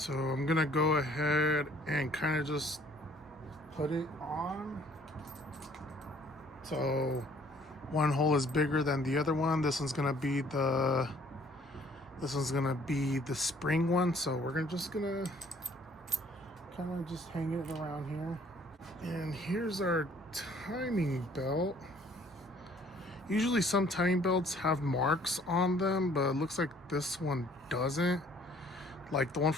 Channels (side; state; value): both; normal; correlation 0.59